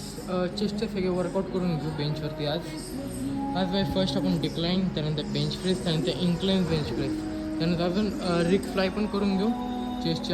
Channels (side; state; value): both; identical; correlation 1.00